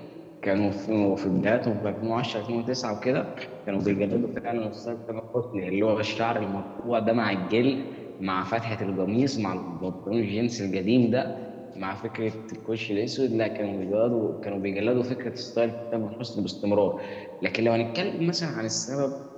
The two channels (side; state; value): both; identical; correlation 1.00